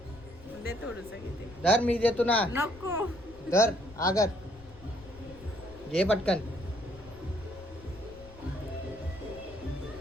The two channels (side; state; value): left; noise; rumble, 19 dB below the sound